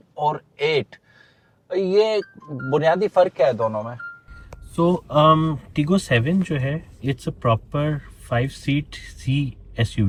और 8, ये बुनियादी फ़र्क क्या है दोनों में? सो टीगो 7 जो है it's a proper 5 seater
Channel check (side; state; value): both; identical; correlation 1.00